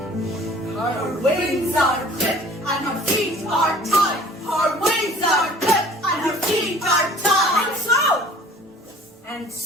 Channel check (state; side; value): normal; both; correlation 0.49